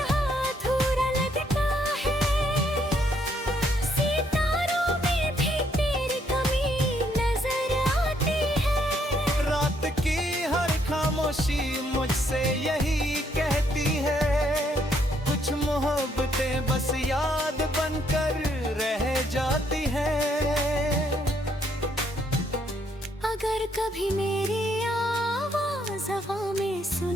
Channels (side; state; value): both; normal; correlation 0.71